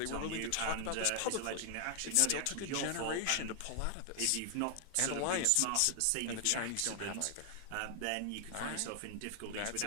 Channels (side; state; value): both; different; correlation 0.00